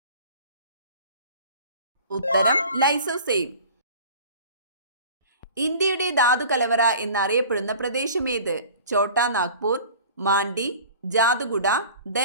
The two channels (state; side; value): inverted; both; correlation -0.43